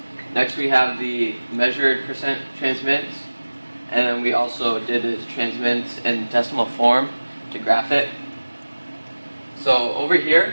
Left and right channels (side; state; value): both; inverted; correlation -1.00